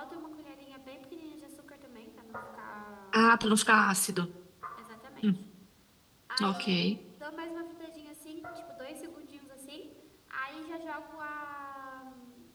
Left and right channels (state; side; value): identical; both; correlation 1.00